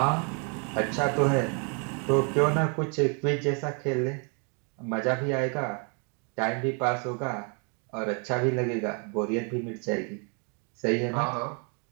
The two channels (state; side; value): quieter; left; 37.7 dB